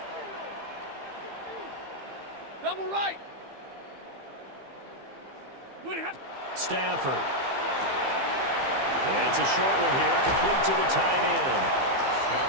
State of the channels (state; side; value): late; left; 15 ms